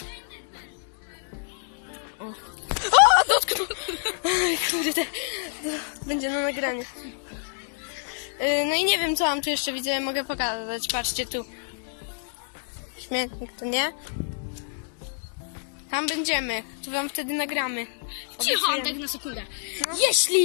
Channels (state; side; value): silent; right; digital silence